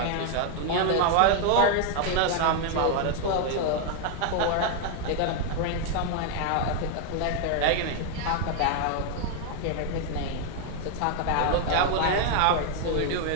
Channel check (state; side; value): different; both; correlation 0.01